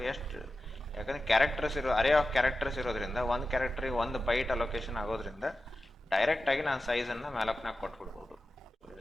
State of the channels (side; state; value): both; normal; correlation 0.93